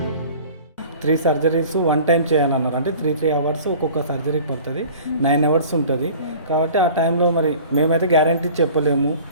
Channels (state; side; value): inverted; both; correlation -0.44